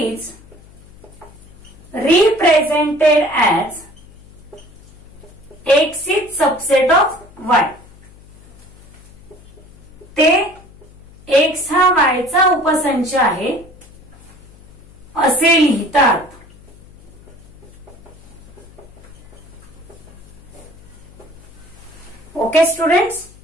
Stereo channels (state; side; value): noise; left; hum, 23 dB below the sound